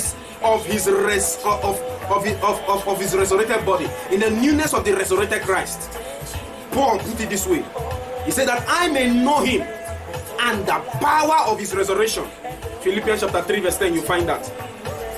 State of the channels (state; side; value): identical; both; correlation 1.00